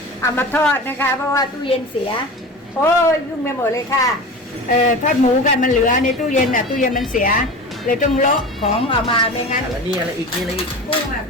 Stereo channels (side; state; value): both; normal; correlation 0.32